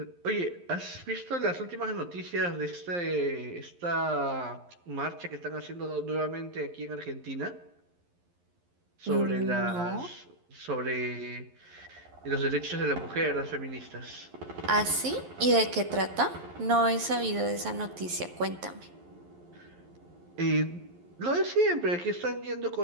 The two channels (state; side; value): late; left; 11 ms